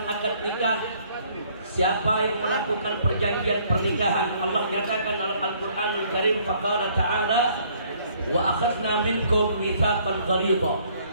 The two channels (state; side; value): inverted; both; correlation -0.62